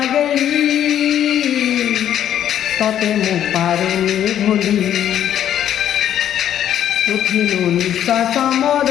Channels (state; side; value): quieter; right; 10.6 dB